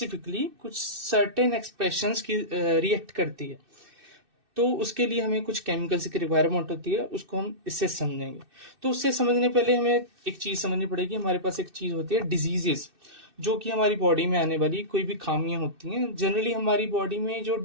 कुछ सर्टेन एक्सप्रेशंस की रिएक्ट करती है. तो उसके लिए हमें कुछ केमिकल्स की रिक्वायरमेंट होती है, उसको हम इससे समझेंगे. तो उससे समझने पहले हमें एक चीज समझनी पड़ेगी. हमारे पास एक चीज होती है डिजीजेस, जो कि हमारी बॉडी में आने वाली कोई भी खामियां होती हैं. जनरली हमारी बॉडी में जो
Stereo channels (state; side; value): late; left; 2.6 ms